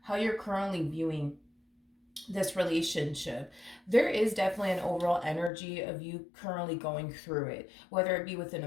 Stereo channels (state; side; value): drops out; right; at 5.5 s